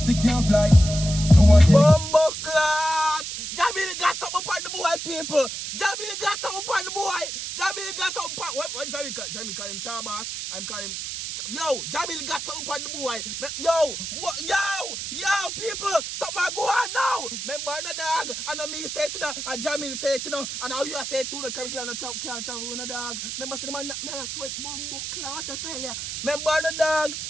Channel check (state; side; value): noise; right; hiss, 6 dB below the sound